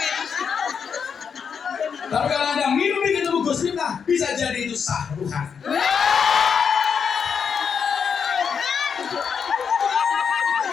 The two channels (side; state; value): right; quieter; 6.6 dB